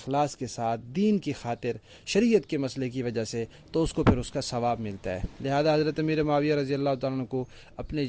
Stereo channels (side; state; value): both; identical; correlation 1.00